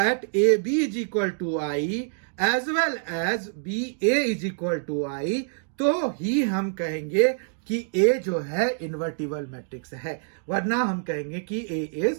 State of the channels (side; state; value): left; silent; digital silence